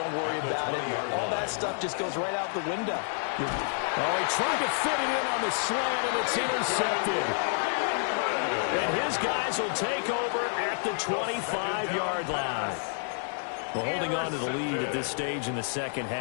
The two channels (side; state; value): right; silent; 59 dB below the other